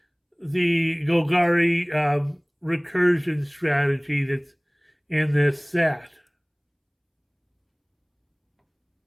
Golgari recursion strategy that's in this set.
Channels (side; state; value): both; identical; correlation 1.00